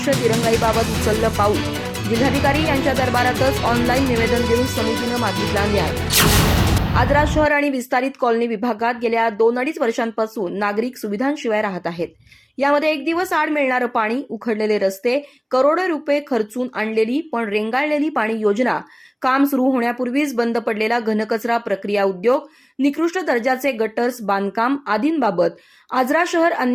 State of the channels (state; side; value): identical; both; correlation 1.00